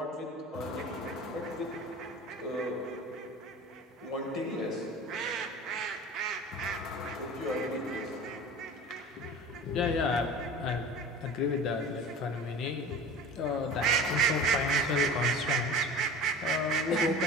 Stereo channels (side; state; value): both; normal; correlation 0.37